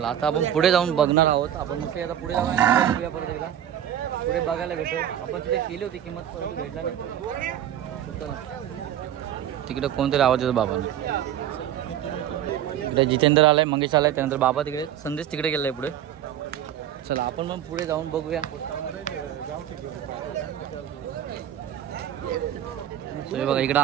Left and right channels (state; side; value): quieter; left; 10.8 dB